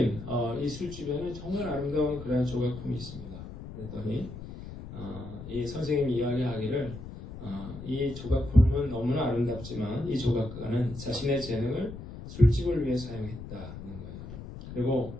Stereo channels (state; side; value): noise; left; rumble, 12 dB below the sound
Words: 이 술집에는 정말 아름다운 그런 조각품이 있습니다. 그랬더니 이 선생님이 이야기하기를 이 조각품은 너무나 아름답지만 이 조각가는 자신의 재능을 술집을 위해 사용했다는 거예요. 그리고